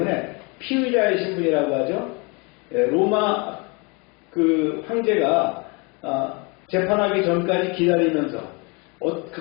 피의자의 신분이라고 하죠. 로마 그 황제가 재판하기 전까지 기다리면서 그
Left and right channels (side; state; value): right; quieter; 30.0 dB